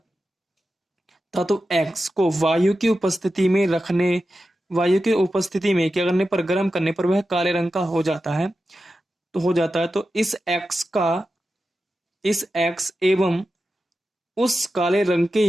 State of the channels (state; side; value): normal; both; correlation 0.91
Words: धातु एक्स को वायु की उपस्थिति में क्या करने पर, गर्म करने पर वह काले रंग का हो जाता है। तो इस एक्स एवं उस काले रंग के